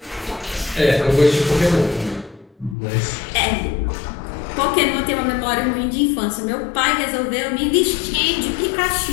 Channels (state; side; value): drops out; right; at 2.8 s